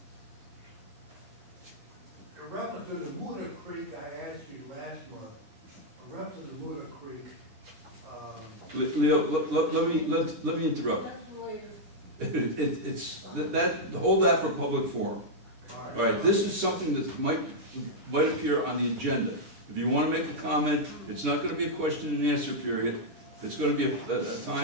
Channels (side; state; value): left; late; 10 ms